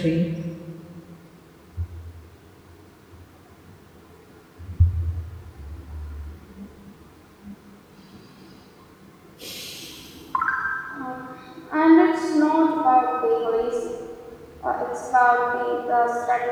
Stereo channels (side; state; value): both; identical; correlation 1.00